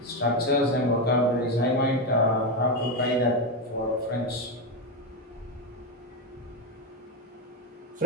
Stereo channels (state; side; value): normal; both; correlation 0.10